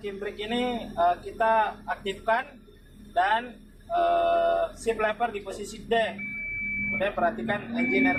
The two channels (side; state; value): both; identical; correlation 1.00